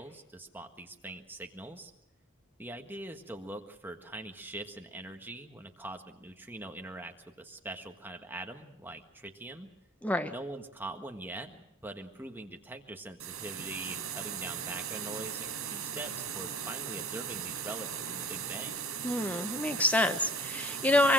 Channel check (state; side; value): normal; both; correlation 0.45